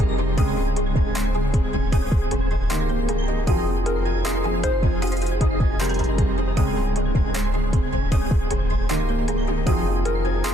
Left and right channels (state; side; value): normal; both; correlation 0.73